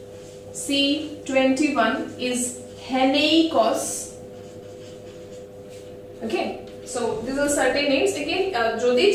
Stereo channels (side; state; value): both; identical; correlation 1.00